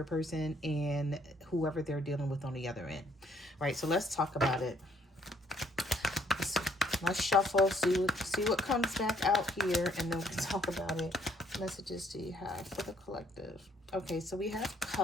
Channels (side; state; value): both; normal; correlation 0.66